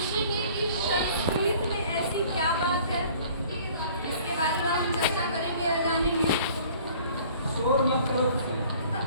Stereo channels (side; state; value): both; inverted; correlation -0.52